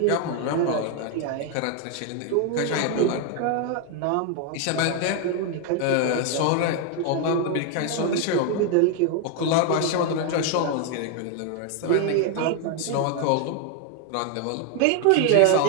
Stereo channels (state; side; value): different; both; correlation 0.01